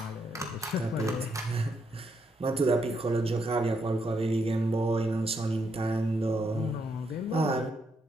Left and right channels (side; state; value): both; normal; correlation 0.78